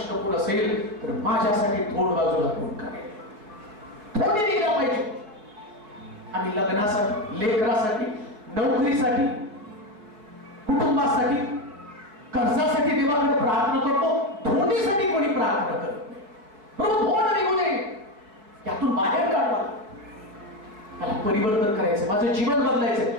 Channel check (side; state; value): left; late; 4.7 ms